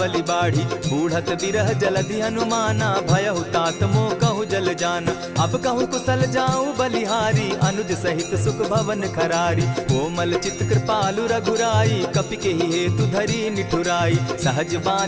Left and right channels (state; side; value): identical; both; correlation 1.00